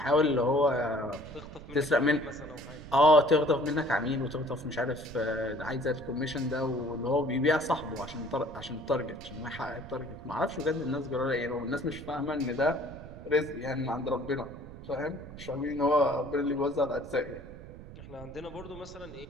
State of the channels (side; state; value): right; noise; rumble, 14 dB below the sound